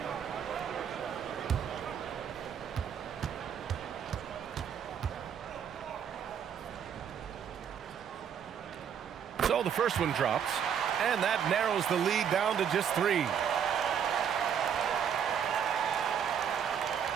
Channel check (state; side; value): quieter; left; 8.2 dB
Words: So the first one drops, and that narrows the lead down to just 3.